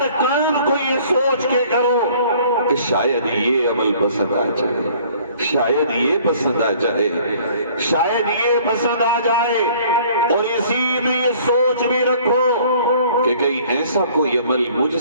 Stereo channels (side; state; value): both; inverted; correlation -0.55